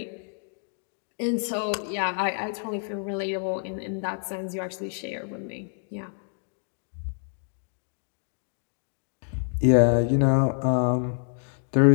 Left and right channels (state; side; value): silent; right; 56 dB below the other